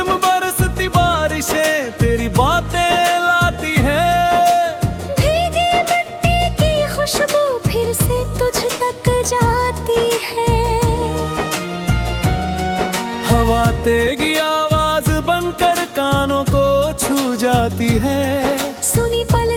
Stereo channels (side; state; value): both; identical; correlation 1.00